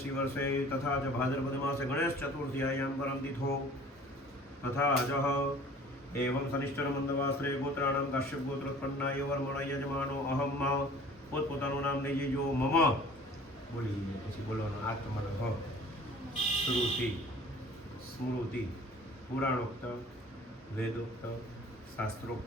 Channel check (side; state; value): both; normal; correlation 0.48